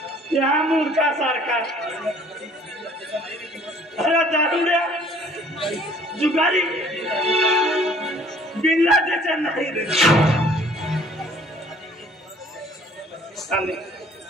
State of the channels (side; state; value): both; normal; correlation 0.56